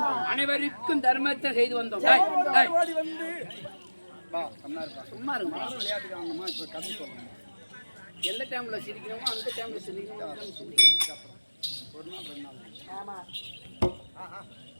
அனைவருக்கும் தர்மத்தை செய்து வந்தோம். சும்மா இருக்கும். எந்த டைம்ல சிரிக்கணுமோ அந்த டைம்ல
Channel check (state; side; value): inverted; both; correlation -1.00